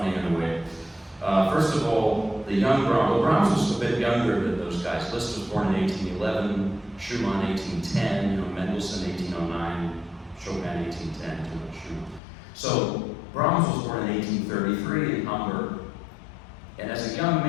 in a way. First of all, the young Brahms, well, Brahms was a bit younger than those guys. Liszt was born in 1811, Schumann 1810, Mendelssohn 1809, Chopin 1810, too much Schumann. So Brahms was born in 1833 in Hamburg, and as a young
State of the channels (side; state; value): right; drops out; at 12.2 s